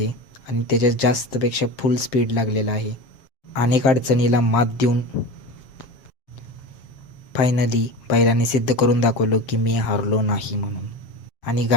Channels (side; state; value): right; late; 7.3 ms